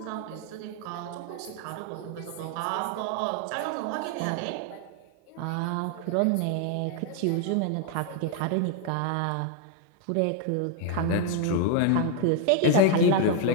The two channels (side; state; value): both; different; correlation 0.01